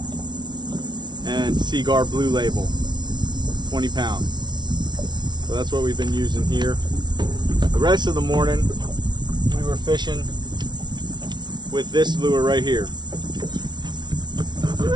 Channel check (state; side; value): late; left; 0.21 ms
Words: and Seaguar Blue Label, 20 pound. So that's what we've been using here. The rest of the morning we were fishing with this lure right here.